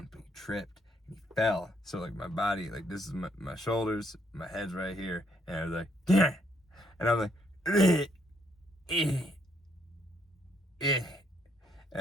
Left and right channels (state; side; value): normal; both; correlation 0.72